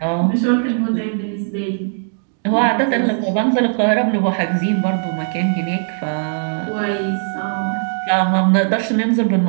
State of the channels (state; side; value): silent; left; digital silence